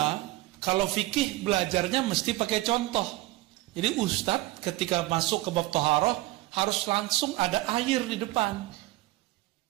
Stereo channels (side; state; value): left; quieter; 18.6 dB